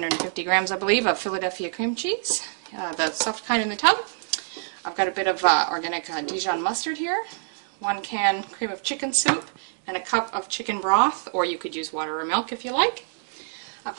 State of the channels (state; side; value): silent; left; digital silence